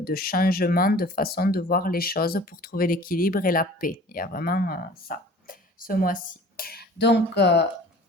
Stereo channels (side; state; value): both; normal; correlation 0.46